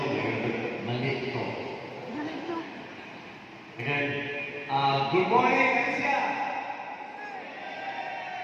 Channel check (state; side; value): identical; both; correlation 1.00